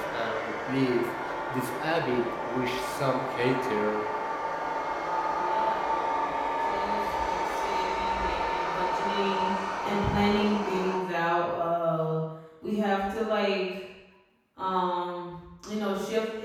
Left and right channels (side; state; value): both; identical; correlation 1.00